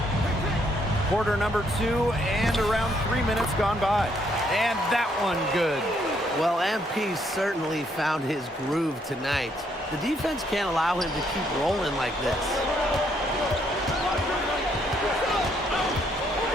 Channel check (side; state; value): both; normal; correlation 0.71